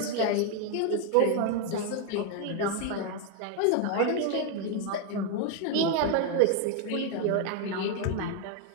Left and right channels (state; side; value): different; both; correlation 0.01